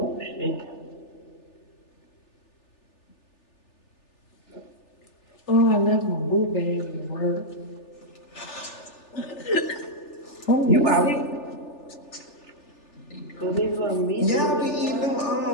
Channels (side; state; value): right; late; 3.4 ms